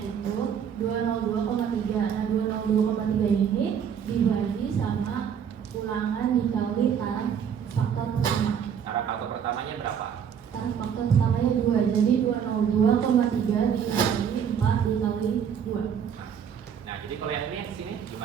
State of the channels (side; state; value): left; quieter; 7.9 dB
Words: 202,3. Nah 202,3 ini dibagi sama ulangan dikali taraf faktor pertama. Taraf faktor pertamanya berapa? Taraf faktor pertamanya 2. Jadi 202,3 dikali 4 dikali 2. Nah, jadi kalau yang ini yang sini